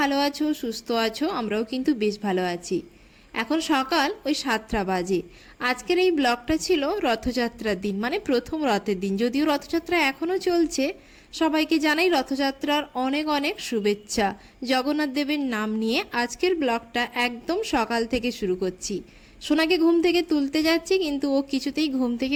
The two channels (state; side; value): identical; both; correlation 1.00